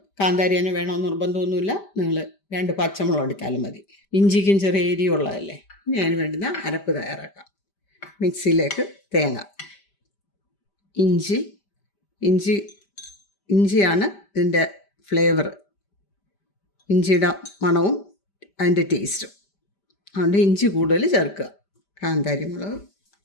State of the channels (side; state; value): right; late; 5.1 ms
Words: കാന്താരി തന്നെ വേണമെന്ന് നിർബന്ധമൊന്നുമില്ല. നിങ്ങൾ 2 പച്ചമുളക് എടുത്താലും മതി. ഇഞ്ചിക്കും ചെറിയ എരിയുള്ളതല്ലേ. ഇനി അതിന് വേണ്ടുന്ന അരപ്പ് തയ്യാറാക്കാം. മിക്സിയിലേക്ക് തേങ്ങ, ഇഞ്ചിയാണ് ഇതിൻ്റെ ഫ്ലേവർ. ഇഞ്ചിയുടെ മണവും അതിൻ്റെ ടേസ്റ്റും. അതുകൊണ്ട് ഇഞ്ചി കൂടുതൽ ചേർക്കുക. കാന്താരി മുളക്,